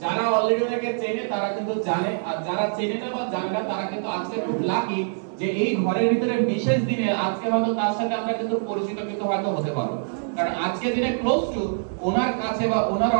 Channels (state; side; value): silent; left; digital silence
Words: যারা অলরেডি ওনাকে চেনে তারা কিন্তু জানে, আর যারা চেনে না বা জানে না তারা কিন্তু আজকে খুব লাকি যে এই ঘরের ভিতরে বিশেষ দিনে আজকে হয়তো তার সাথে আমরা কিন্তু পরিচিত কিন্তু হয়তো হতে পারবো। কারণ আজকে দিনে ক্লোজ টু ওনার কাছে বা ওনার